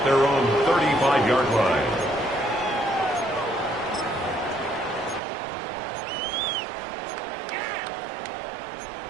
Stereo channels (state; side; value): drops out; left; at 5.2 s